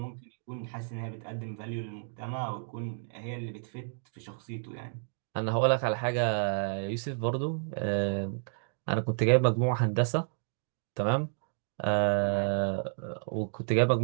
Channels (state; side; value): silent; left; digital silence